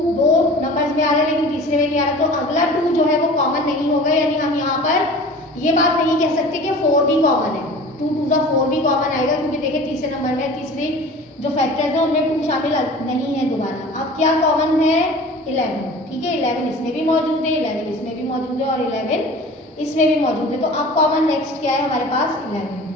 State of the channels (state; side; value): normal; both; correlation 0.41